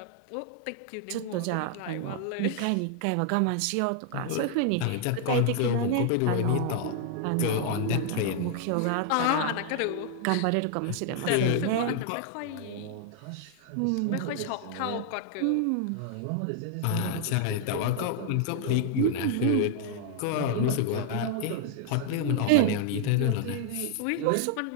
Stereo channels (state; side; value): different; both; correlation 0.00